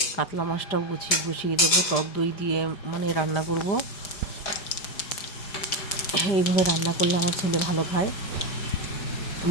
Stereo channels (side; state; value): right; late; 5.0 ms